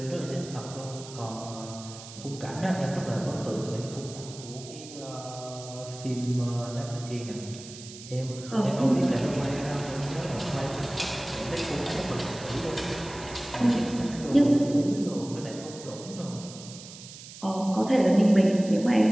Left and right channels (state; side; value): noise; right; hiss, 15 dB below the sound